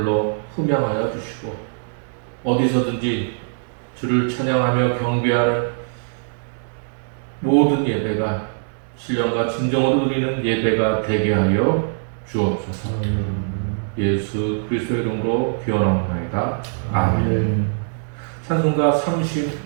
흠양하여 주시고 어디서든지 주를 찬양하며 경배하는 모든 예배가 신령과 진정으로 드리는 예배가 되게 하여 주옵소서. 예수 그리스도의 이름으로 기원하옵나이다. 아멘. 찬송가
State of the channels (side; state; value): left; silent; digital silence